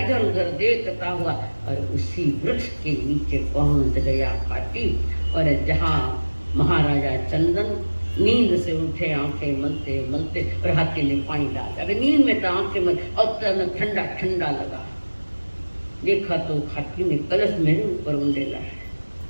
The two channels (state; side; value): inverted; both; correlation -1.00